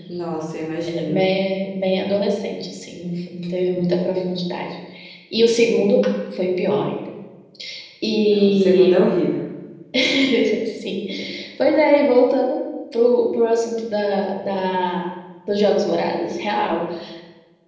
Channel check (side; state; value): both; identical; correlation 1.00